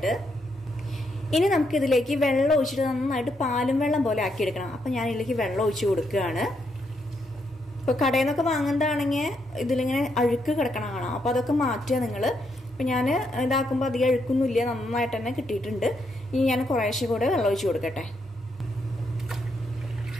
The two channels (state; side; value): normal; both; correlation 0.78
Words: ഇനി നമുക്ക് ഇതിലേക്ക് വെള്ളം ഒഴിച്ചിട്ട് നന്നായിട്ട് പാലും വെള്ളം പോലെ ആക്കിയെടുക്കണം. അപ്പൊ ഞാൻ ഇതിലേക്ക് വെള്ളം ഒഴിച്ചു കൊടുക്കുകയാണ്. ഇപ്പൊ കടയിൽ നിന്നൊക്കെ വാങ്ങുന്നതാണെങ്കിൽ ഇതിലിങ്ങനെ അഴുക്ക് കിടക്കണം കാണാം. അപ്പൊ അതൊക്കെ മാറ്റുക നിങ്ങൾ. അപ്പം ഞാൻ ഇതാക്കുമ്പോൾ അധികം അഴുക്കൊന്നുമില്ല, നന്നായിട്ട് തന്നെ കിട്ടിയിട്ടുണ്ട്. ഇനി ഞാൻ കുറേശ്ശെ കൂടെ വെള്ളം ഒഴിച്ച് കൊടുക്കട്ടെ.